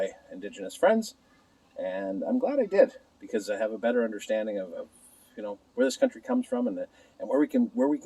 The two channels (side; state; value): both; identical; correlation 1.00